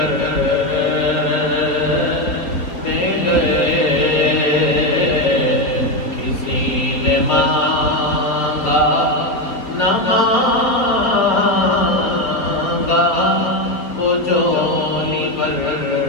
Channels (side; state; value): right; late; 4.2 ms